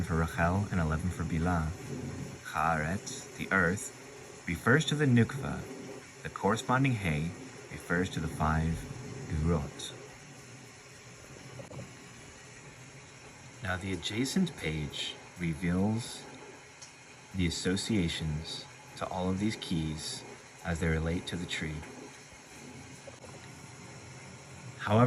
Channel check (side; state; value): both; identical; correlation 1.00